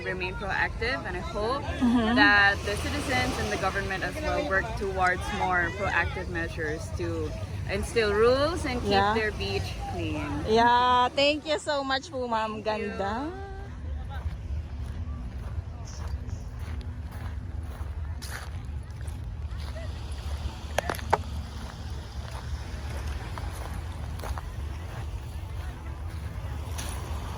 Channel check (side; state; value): both; identical; correlation 1.00